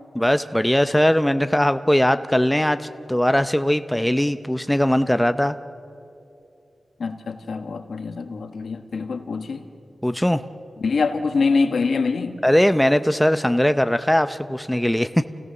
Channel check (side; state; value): both; normal; correlation 0.98